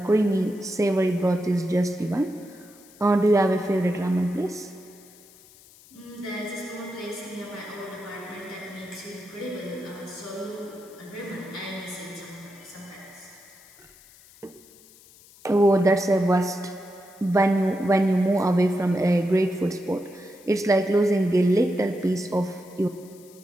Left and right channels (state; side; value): noise; left; hiss, 24 dB below the sound